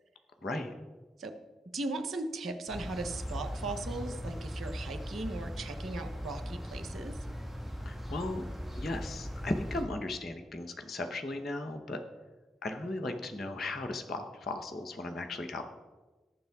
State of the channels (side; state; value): both; normal; correlation 0.79